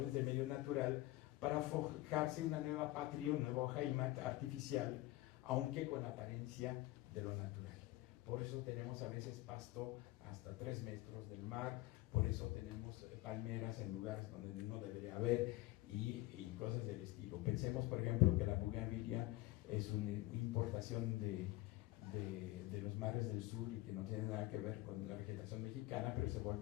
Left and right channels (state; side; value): quieter; right; 18.0 dB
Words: del medio natural para forjarse una nueva patria, un nuevo Heimat artificial, aunque con apariencia de lo natural. Por eso tenemos a veces pasto hasta 3 metros del mar, por eso tenemos palmeras en lugares donde no debería haber y cosas del estilo. Pensemos, por ejemplo, que la bougainvillea es una importación de los mares del sur y que no tiene nada que ver con la vegetación mexicana, pero se